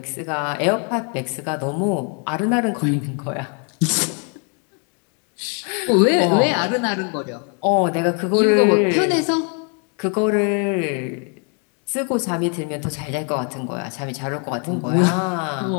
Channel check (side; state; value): right; quieter; 38.2 dB